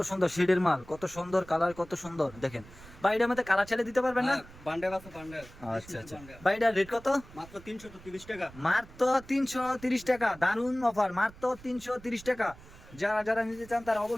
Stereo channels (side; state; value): right; noise; rumble, 20 dB below the sound